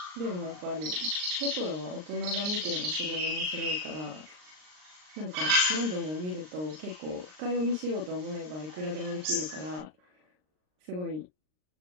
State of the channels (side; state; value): left; late; 39 ms